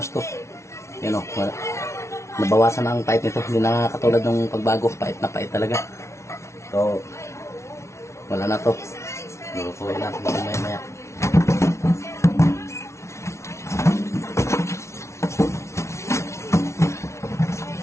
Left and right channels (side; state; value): right; late; 0.13 ms